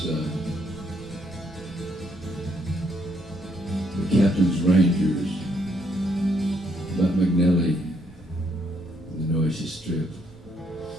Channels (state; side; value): normal; both; correlation 0.72